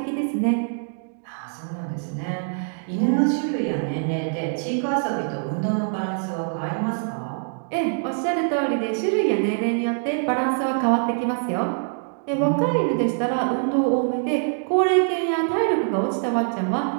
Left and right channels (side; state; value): left; silent; digital silence